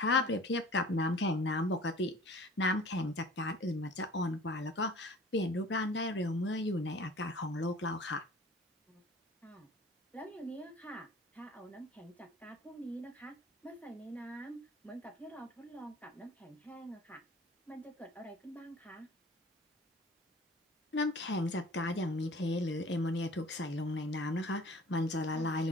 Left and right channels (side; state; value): both; normal; correlation 0.46